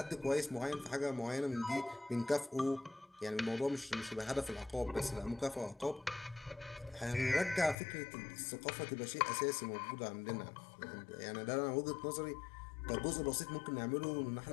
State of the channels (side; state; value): right; drops out; at 7.8 s